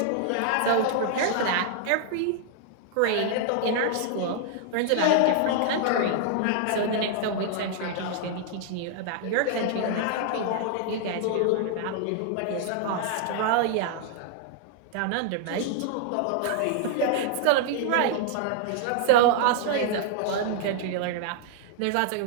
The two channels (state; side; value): different; both; correlation 0.00